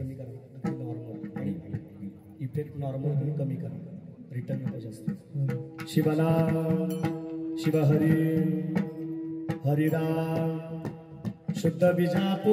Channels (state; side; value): identical; both; correlation 1.00